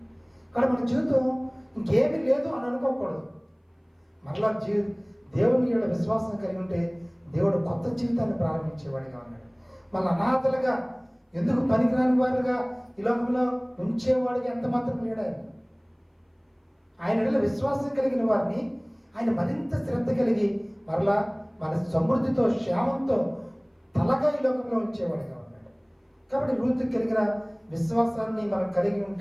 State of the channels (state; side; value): identical; both; correlation 1.00